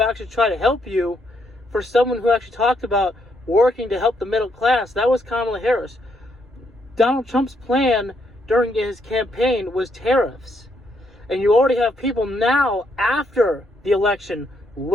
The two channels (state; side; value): normal; both; correlation 0.75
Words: actually try to help you, for someone who actually talked about working to help the middle class, that was Kamala Harris. Donald Trump's plan during his campaign was tariffs. And you already have people now, after the election,